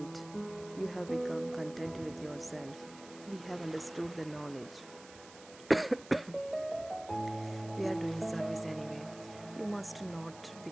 You have become content with yourself. We have understood the knowledge. We are doing service anyway. You must not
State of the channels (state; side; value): noise; right; hiss, 18 dB below the sound